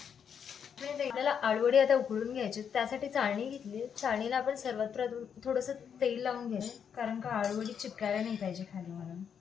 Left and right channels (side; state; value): right; quieter; 7.6 dB